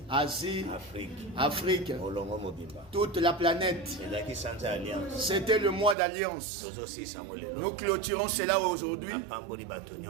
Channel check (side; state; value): left; drops out; at 6.0 s